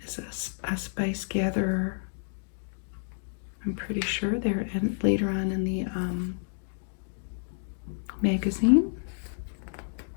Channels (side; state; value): right; silent; digital silence